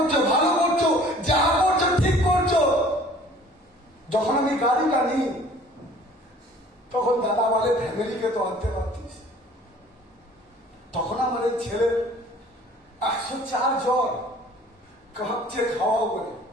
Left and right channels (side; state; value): both; normal; correlation 0.51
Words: ভালো করছো, যা করছো ঠিক করছো। যখন আমি গাড়িটা নিই তখন দাদা বলে ফ্যামিলিকে তো আনতে পারতিস। তখন আমার এই ছেলে 104 জ্বর, কাঁপছে খাওয়াও করে।